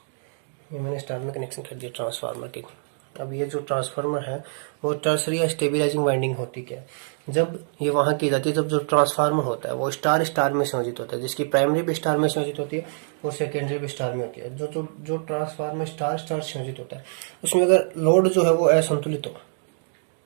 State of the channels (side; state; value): left; silent; 62 dB below the other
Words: ये मैंने स्टार में कनेक्शन कर दिया ट्रांसफार्मर के। अब ये जो ट्रांसफार्मर है वो टर्सरी या स्टेबिलाइजिंग वाइंडिंग होती क्या है। जब ये वहां की जाती है जब जो ट्रांसफार्मर होता है वो स्टार स्टार में संयोजित होता है, जिसकी प्राइमरी भी स्टार में संयोजित होती है और सेकेंडरी भी स्टार में होती है। जो ट्रांसफार्मर स्टार स्टार संयोजित होता है उसमें अगर लोड जो है वो असंतुलित हो,